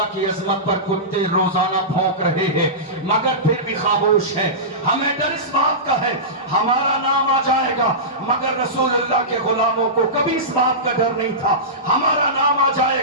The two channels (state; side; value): normal; both; correlation -0.19